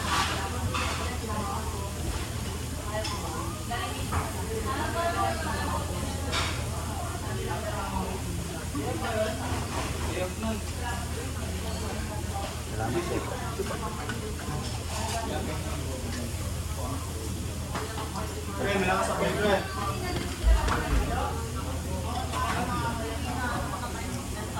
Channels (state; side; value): identical; both; correlation 1.00